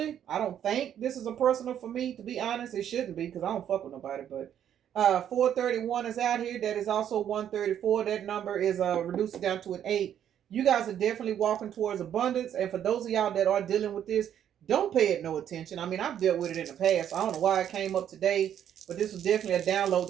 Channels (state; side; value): quieter; left; 9.9 dB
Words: I don't think this is a personal for me, to be honest. It shouldn't be because I don't fuck with nobody. But 431 is out here. That is also 134. That number is reduced down to an 8. You guys are definitely walking towards abundance. And for those of y'all that are dealing with this, don't pay it no attention. I mean, I've dealt with it in the past. I don't know why it came up today, but this was definitely a download